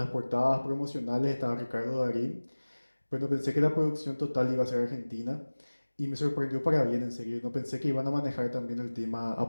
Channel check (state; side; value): inverted; both; correlation -1.00